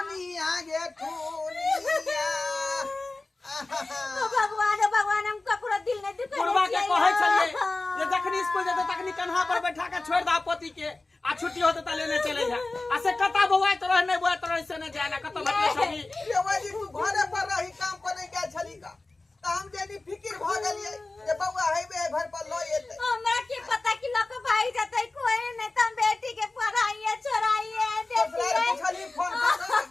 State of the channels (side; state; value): right; quieter; 3.2 dB